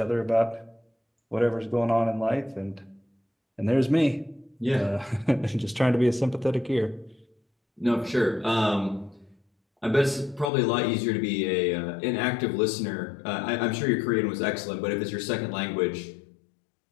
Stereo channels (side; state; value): right; drops out; at 10.5 s